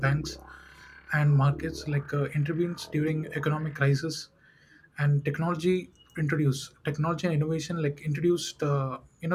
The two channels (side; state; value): both; identical; correlation 1.00